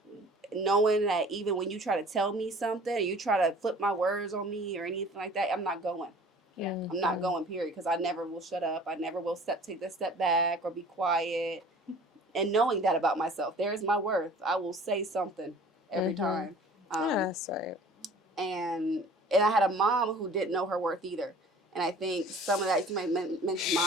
knowing that even when you try to tell me something, or you try to flip my words on me or anything like that, I'm not going. I'm not going, period, because I never will shut up. I never will take this step back or be quiet. And knowing that about myself, there is my worth. I will say something every time. That's right. And I had a mom who didn't know her worth either. And I think some of that, you might mention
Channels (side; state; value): both; normal; correlation 0.48